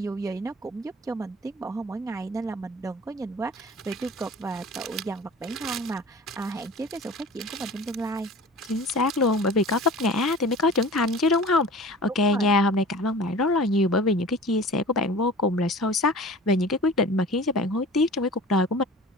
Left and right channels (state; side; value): normal; both; correlation 0.40